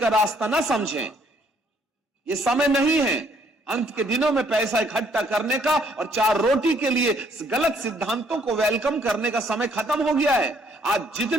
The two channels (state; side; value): normal; both; correlation 0.66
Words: रास्ता ना समझें। यह समय नहीं है अंत के दिनों में पैसा इकट्ठा करने का और 4 रोटी के लिए गलत सिद्धांतों को वेलकम करने का समय खत्म हो गया है। आज